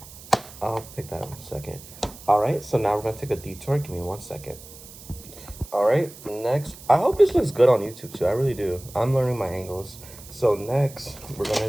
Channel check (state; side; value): noise; right; hiss, 18 dB below the sound